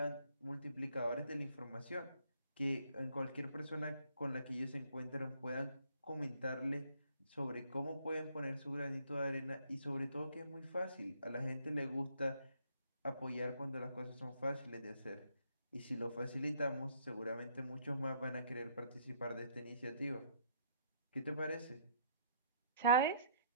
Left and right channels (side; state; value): both; inverted; correlation -0.65